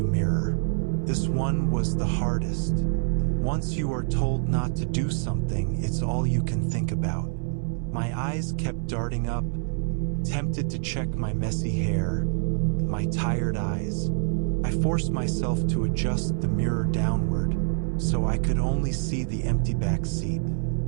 mirror. This one was the hardest. Once you are told not to do something, it's all you can think about. My eyes kept darting up, tempted to check my messy hair, my tired eyes. I forced myself to adjust the mirror downward, so I could only see the empty back seat.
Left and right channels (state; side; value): silent; left; 61 dB below the other